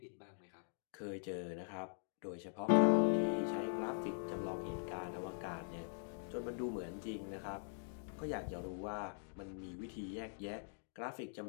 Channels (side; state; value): right; silent; digital silence